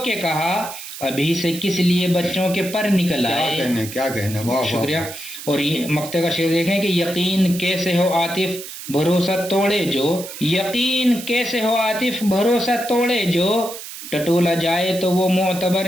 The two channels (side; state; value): right; noise; hiss, 11 dB below the sound